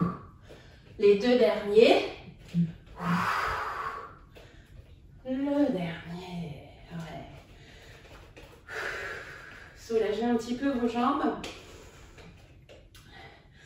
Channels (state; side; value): identical; both; correlation 1.00